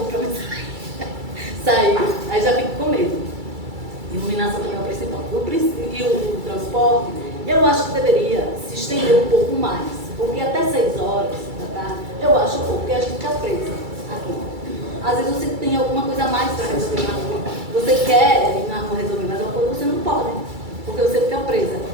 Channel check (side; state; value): left; late; 2.3 ms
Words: para me sair. Aí já fico com medo. Iluminação também é o principal. E o transporte, eu acho que deveria se estender um pouco mais, porque até 6 horas da tarde, eu acho pouco, porque a gente fica presa aqui. Às vezes você tem alguma coisa a mais para resolver na rua. Você quer ir na rua resolver mais alguma coisa, você não pode, porque você fica presa,